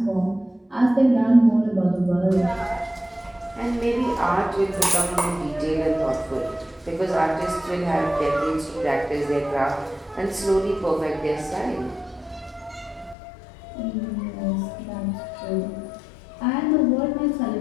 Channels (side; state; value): right; drops out; at 13.2 s